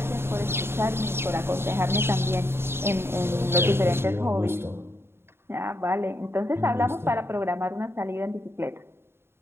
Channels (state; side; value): late; left; 0.12 ms